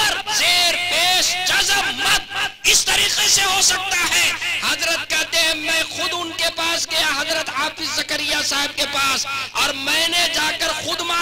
जेर पेश जज़म मद इस तरीके से हो सकता है। हजरत कहते हैं मैं खुद उनके पास गया, हजरत हाफिज जकरिया साहब के पास और मैंने जाकर खुद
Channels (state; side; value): identical; both; correlation 1.00